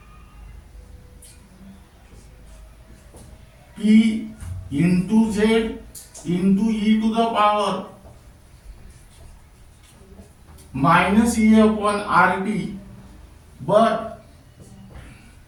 P into Z into e to the power minus E upon RT, but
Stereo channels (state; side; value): identical; both; correlation 1.00